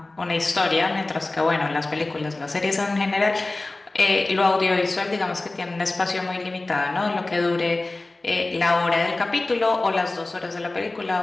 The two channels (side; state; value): right; quieter; 3.0 dB